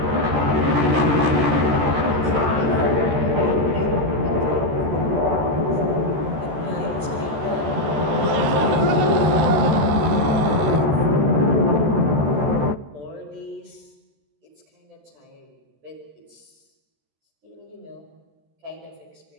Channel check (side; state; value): left; late; 13 ms